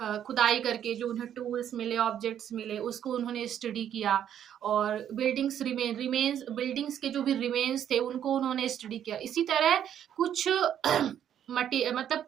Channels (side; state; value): left; quieter; 9.9 dB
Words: खुदाई करके जो उन्हें टूल्स मिले, ऑब्जेक्ट्स मिले, उसको उन्होंने स्टडी किया। और बिल्डिंग्स बिल्डिंग्स के जो भी रिमेन्स थे, उनको उन्होंने स्टडी किया। इसी तरह कुछ मतलब